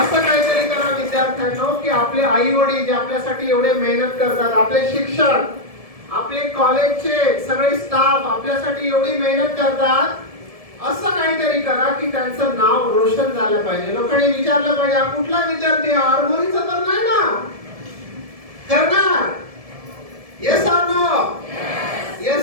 काहीतरी करा विद्यार्थ्यांनो की आपले आई वडील जे आपल्यासाठी एवढे मेहनत करतात, आपले शिक्षक, आपले कॉलेजचे सगळे स्टाफ आपल्यासाठी एवढी मेहनत करतात, असं काहीतरी करा की त्यांचं नाव रोशन झालं पाहिजे. लोकांनी विचारलं पाहिजे हा कुठला विद्यार्थी, आरमोरीचा तर नाही ना? करणार? Yes or no?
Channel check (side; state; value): left; late; 1.7 ms